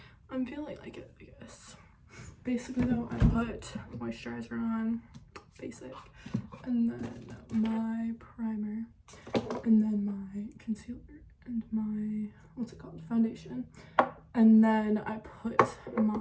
I'm feeling like it, I guess. Basically though, I put moisturizer on, basic, and then my primer, and then my concealer, and my, what's it called, foundation. And then I put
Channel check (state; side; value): identical; both; correlation 1.00